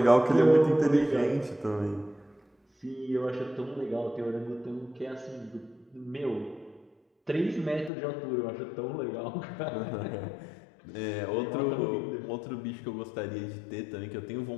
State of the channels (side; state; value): right; drops out; at 7.9 s